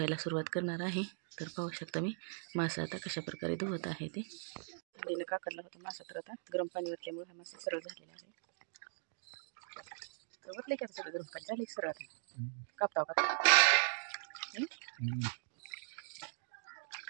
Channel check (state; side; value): silent; left; digital silence